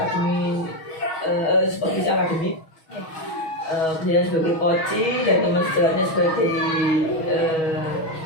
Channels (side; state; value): right; late; 6.2 ms